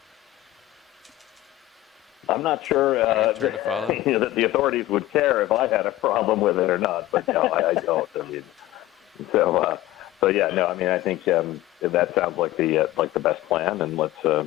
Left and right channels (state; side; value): quieter; right; 16.1 dB